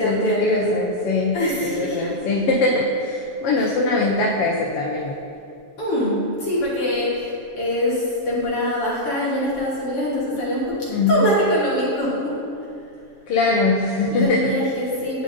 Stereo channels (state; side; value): late; right; 7.2 ms